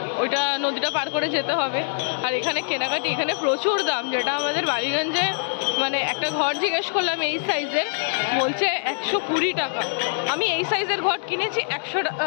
ওইটা নদীটা পার করে যেতে হবে। আর এখানে কেনাকাটি, এখানে প্রচুর দাম, যেটা আমাদের বালিগঞ্জে মানে একটা ঘর জিজ্ঞেস করলাম এই সাইজের, বলছে 120 টাকা। আমি এই সাইজের ঘর কিনেছি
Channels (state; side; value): silent; right; 63 dB below the other